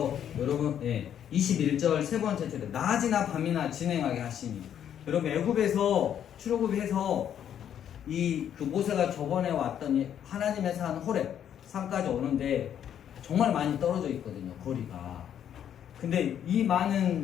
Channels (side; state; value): right; quieter; 9.6 dB